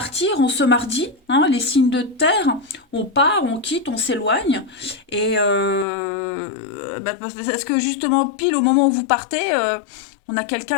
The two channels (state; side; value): drops out; right; at 5.9 s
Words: en ce mardi, hein, les signes de terre, on part, on quitte, on s'éloigne. Et parce que justement, pile au moment où vous partez, on a